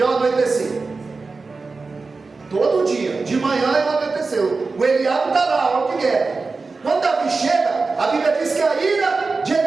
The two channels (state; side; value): quieter; left; 4.1 dB